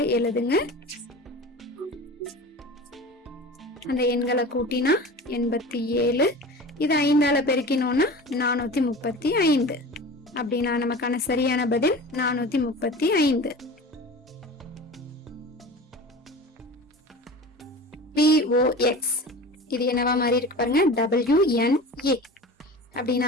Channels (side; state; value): both; normal; correlation 0.35